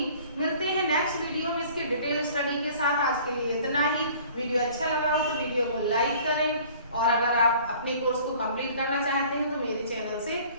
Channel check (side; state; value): both; inverted; correlation -0.51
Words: मिलते हैं नेक्स्ट वीडियो में इसके डिटेल स्टडी के साथ। आज के लिए इतना ही। वीडियो अच्छा लगा हो तो वीडियो को लाइक करें, और अगर आप अपने कोर्स को कंप्लीट करना चाहते हैं तो मेरे चैनल से